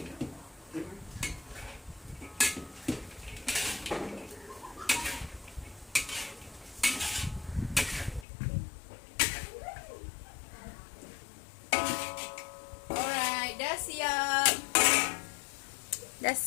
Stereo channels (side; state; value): right; drops out; at 8.2 s